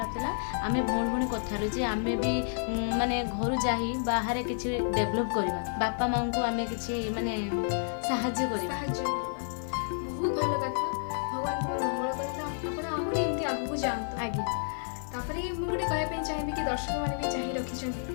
था आम भौणी भौणी कथार जे आम भी माने घर जा बाहर किसी डेभलप करवा बापा माँ को आम कि माने साहाय्य करवा बहुत भल कथा। भगवान तुम मंगल करते आप आहरी एमती आगू जातु। आगे तापर मुझे गोटे कहवाई चाहिए कि दर्शक मैंने भी चाह रखी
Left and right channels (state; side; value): silent; right; digital silence